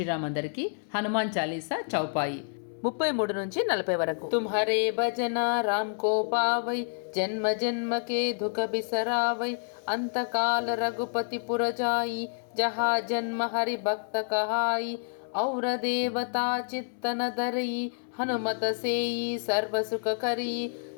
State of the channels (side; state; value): right; silent; 59 dB below the other